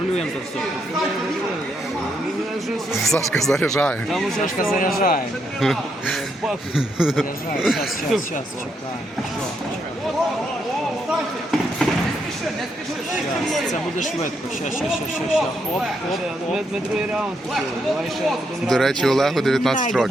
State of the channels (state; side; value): normal; both; correlation 0.78